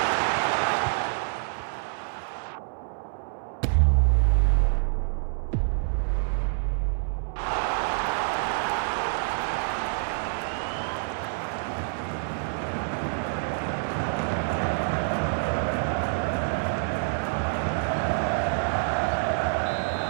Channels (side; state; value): left; silent; 60 dB below the other